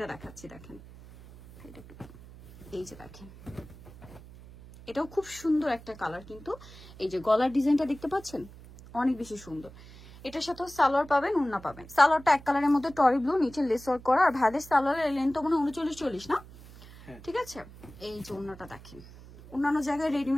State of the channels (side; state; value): right; noise; hum, 19 dB below the sound